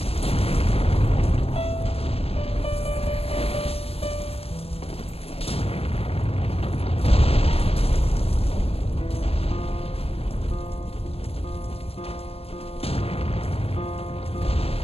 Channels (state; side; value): late; right; 0.28 ms